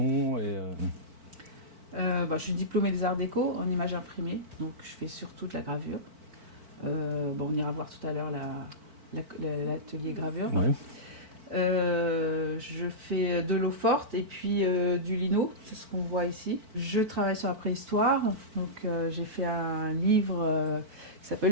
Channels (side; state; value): left; late; 4.5 ms